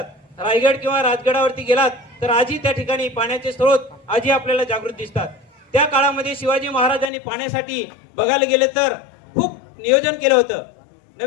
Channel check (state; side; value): drops out; right; at 7.1 s